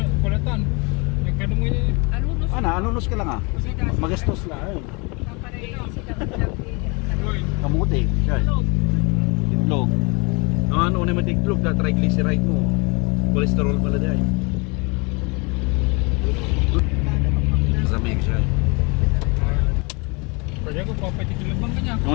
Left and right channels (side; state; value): right; quieter; 29.7 dB